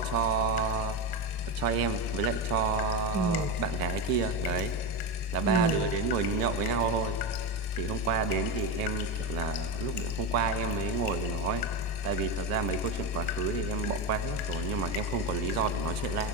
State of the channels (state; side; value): late; left; 2.6 ms